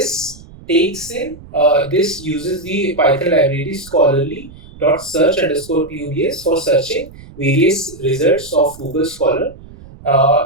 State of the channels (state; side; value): noise; right; rumble, 19 dB below the sound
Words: uses the Python library scholarly dot search underscore pubs for searching various results of Google Scholar.